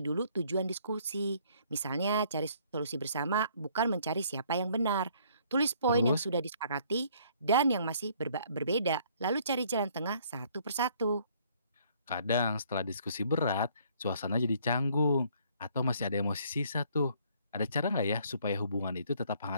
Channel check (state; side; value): inverted; both; correlation -0.62